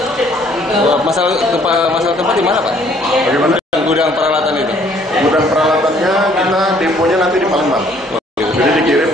Masalah tempat di mana, Pak? Bagaimana? Gudang peralatan itu? Gudang peralatannya kita deponya nanti di Palembang. Jadi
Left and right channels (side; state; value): both; normal; correlation 0.61